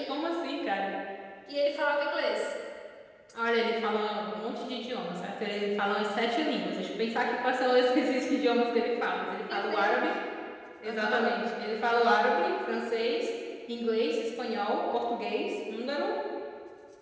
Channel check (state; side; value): identical; both; correlation 1.00